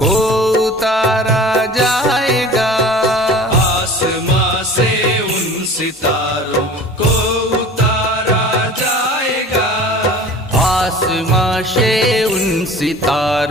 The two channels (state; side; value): normal; both; correlation 0.41